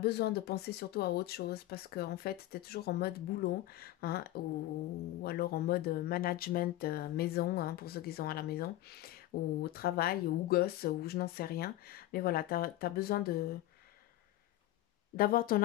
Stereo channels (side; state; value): right; quieter; 15.4 dB